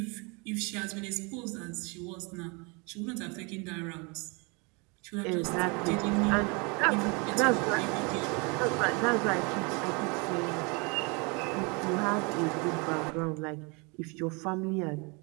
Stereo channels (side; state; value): left; quieter; 30.4 dB